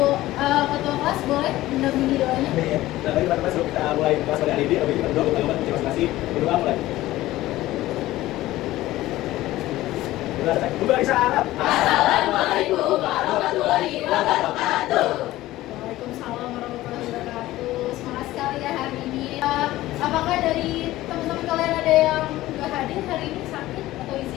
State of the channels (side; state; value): right; quieter; 16.3 dB